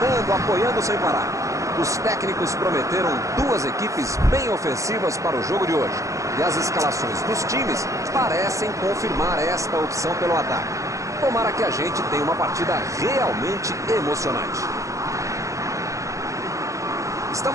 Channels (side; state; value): left; late; 0.15 ms